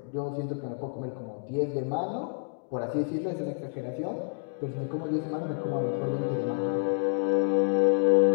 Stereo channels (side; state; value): right; silent; digital silence